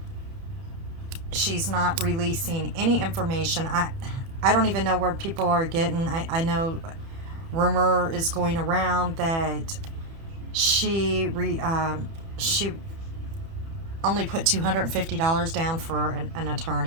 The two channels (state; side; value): late; left; 30 ms